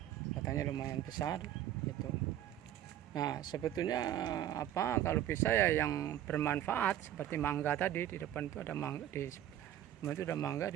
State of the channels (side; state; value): left; quieter; 11.8 dB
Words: batangnya lumayan besar. Itu. Nah, sebetulnya apa kalau bisa ya yang bermanfaat seperti mangga tadi, di depan itu ada mangga, di itu ada mangga,